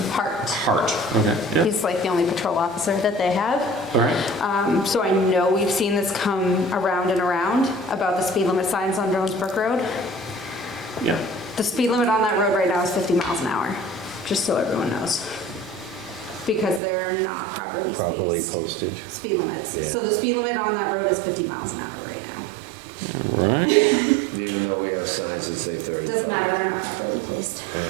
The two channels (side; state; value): left; drops out; at 16.8 s